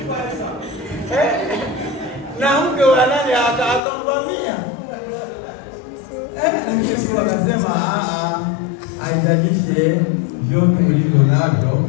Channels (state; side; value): drops out; right; at 3.8 s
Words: na mke wa nani akamvamia. Lakini Yusufu akasema haijalishe vyote ulivyo navyo,